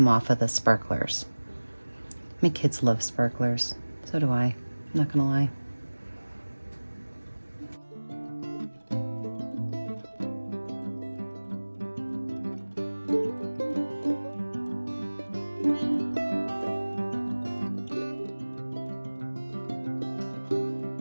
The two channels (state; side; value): inverted; both; correlation -1.00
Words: off of the sparklers. My kids love sparklers. So do I. I'm not gonna lie.